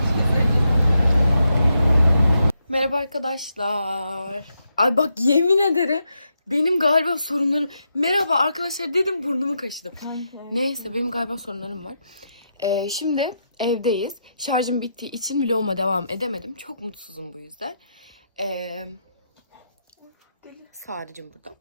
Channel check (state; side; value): inverted; both; correlation -0.82